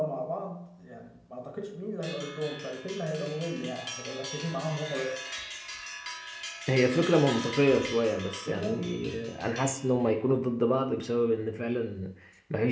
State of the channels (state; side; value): identical; both; correlation 1.00